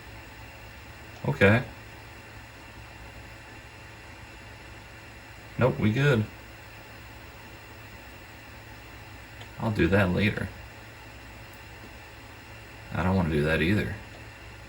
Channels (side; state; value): both; identical; correlation 1.00